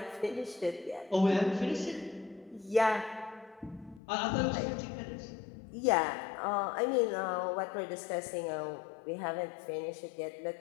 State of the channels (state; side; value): drops out; right; at 4.0 s